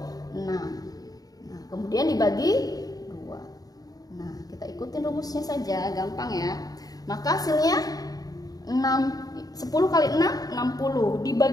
6. Nah, kemudian dibagi 2. Nah, kita ikutin rumusnya saja, gampang ya. Maka hasilnya 10 kali 6, 60.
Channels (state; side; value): late; right; 0.18 ms